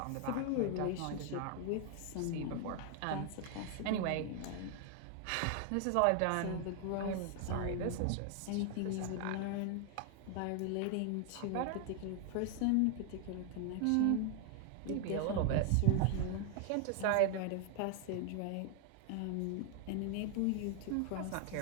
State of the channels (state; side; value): different; both; correlation 0.00